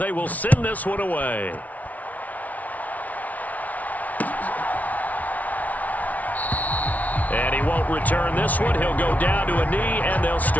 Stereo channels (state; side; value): late; right; 0.072 ms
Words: will send this one away. And he won't return this one. He'll go down to a knee, and they'll